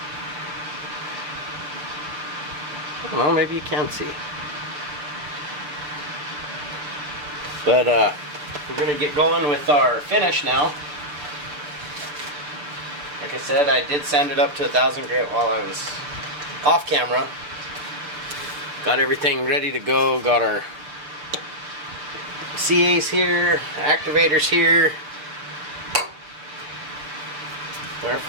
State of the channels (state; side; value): late; left; 6.8 ms